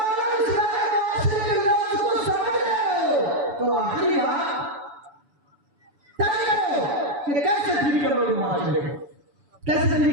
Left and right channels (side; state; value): left; late; 6.9 ms